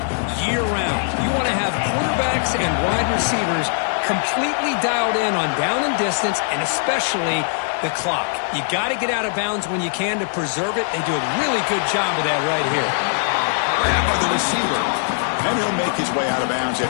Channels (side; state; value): right; silent; 55 dB below the other